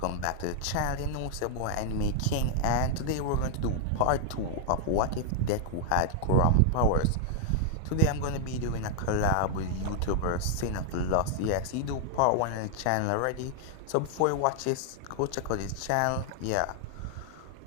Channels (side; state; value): both; different; correlation -0.01